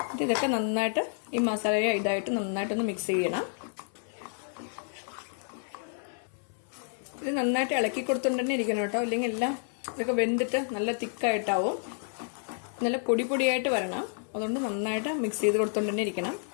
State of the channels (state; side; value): silent; right; 58 dB below the other